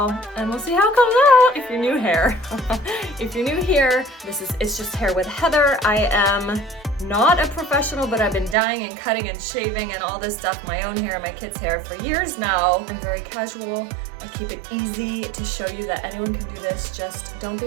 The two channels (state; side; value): drops out; left; at 8.6 s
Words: and we'll see how it comes out. If you're new here, if you're new here, it's just hair with Heather. I am not a professional, but I've been dyeing and cutting and shaving and all this stuff, my own hair, my kids' hair for years now. I'm very casual. I keep it easy to show you that anyone can do this. Just don't